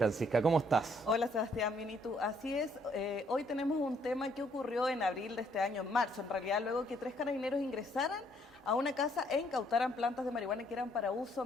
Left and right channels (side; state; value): both; normal; correlation 0.68